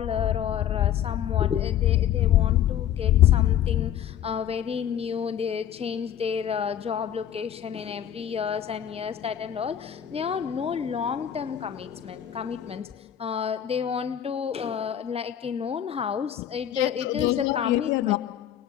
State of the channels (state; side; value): quieter; right; 10.0 dB